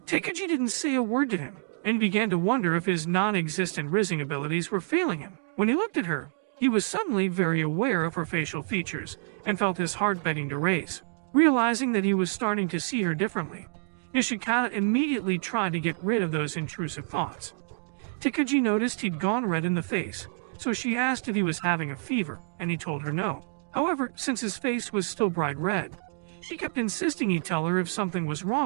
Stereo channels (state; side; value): silent; left; digital silence